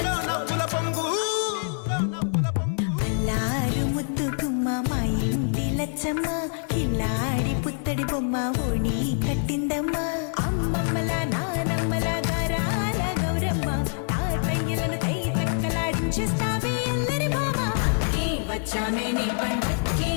నవ్వుల పొంగు ముద్దు గుమ్మ మా ఇంటి లచ్చమ్మ కిల్లాడి పుత్తడి బొమ్మ ఓణి కట్టిందమ్మా అమ్మమ్మల నానమ్మల గారాల గౌరమ్మ తాతయ్యలను కై తక్కలాడించేస్తావే అల్లరి బావ వచ్చామే నీ పండుక్కి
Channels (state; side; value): silent; right; digital silence